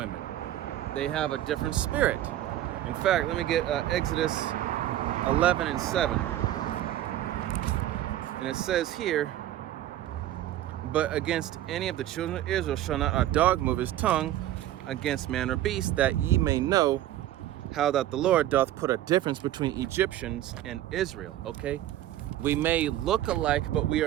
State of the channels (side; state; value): left; quieter; 13.2 dB